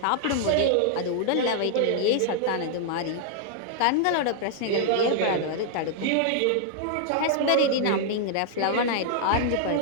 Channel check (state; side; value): different; both; correlation -0.01